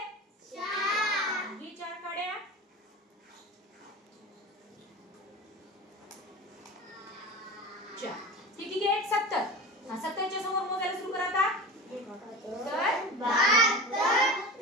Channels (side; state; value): both; normal; correlation 0.31